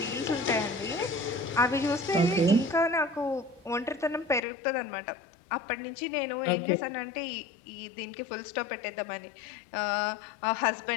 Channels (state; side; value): drops out; right; at 4.4 s